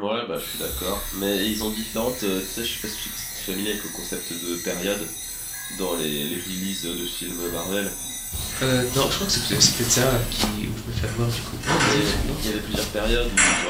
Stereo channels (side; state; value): both; identical; correlation 1.00